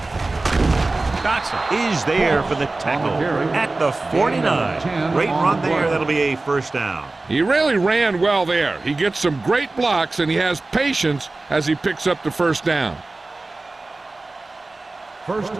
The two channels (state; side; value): quieter; left; 3.2 dB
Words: Dotson is there for the tackle at the 49. Great run there. That'll be a first down. He really ran well there. He gets some great blocks, and he has patience as he picks up the first down. 1st